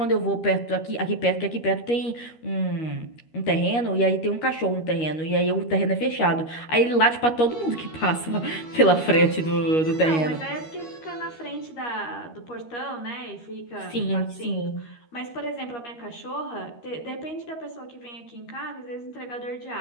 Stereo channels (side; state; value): right; late; 13 ms